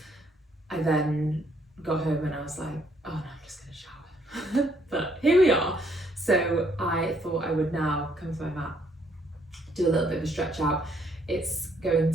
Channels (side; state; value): both; normal; correlation 0.68